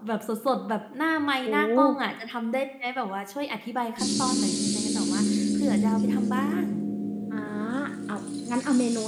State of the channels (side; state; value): both; identical; correlation 1.00